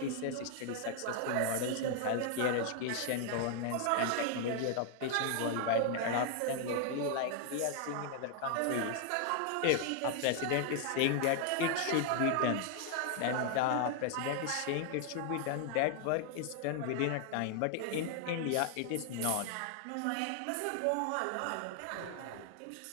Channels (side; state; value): both; different; correlation 0.00